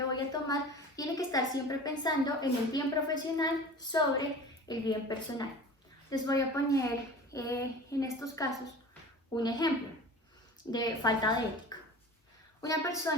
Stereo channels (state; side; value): normal; both; correlation 0.38